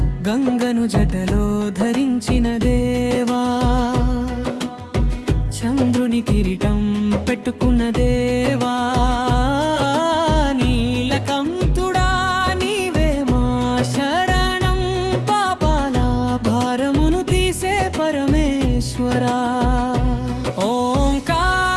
గంగను జటలో ధరించిన దేవా చంద్రుని కిరీటం పెట్టుకున్న దేవా నీలకంఠుడా నీవే మా శరణం పాపాల భారమును తీసే పరమేశ్వరా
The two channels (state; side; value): identical; both; correlation 1.00